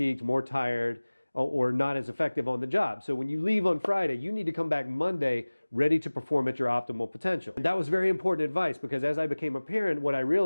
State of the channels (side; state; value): both; inverted; correlation -1.00